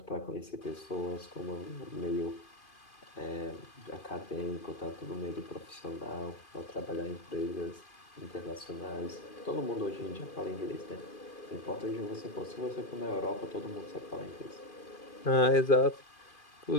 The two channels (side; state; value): right; late; 2.5 ms